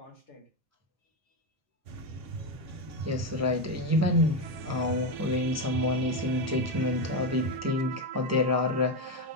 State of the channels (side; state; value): both; normal; correlation 0.10